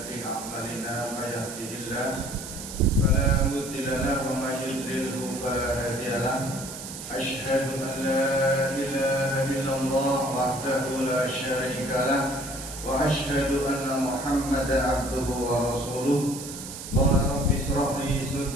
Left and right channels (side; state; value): right; noise; hiss, 10 dB below the sound